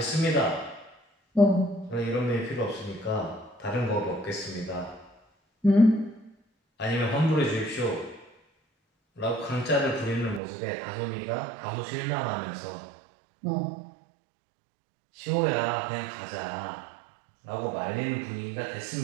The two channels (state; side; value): drops out; left; at 10.4 s